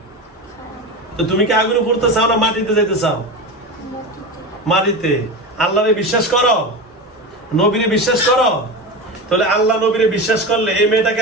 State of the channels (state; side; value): normal; both; correlation 0.24